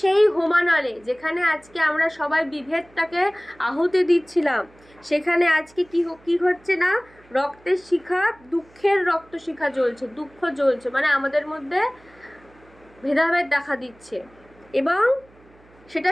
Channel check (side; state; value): right; noise; hum, 28 dB below the sound